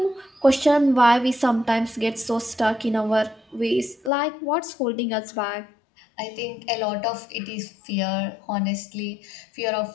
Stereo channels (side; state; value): right; drops out; at 4.1 s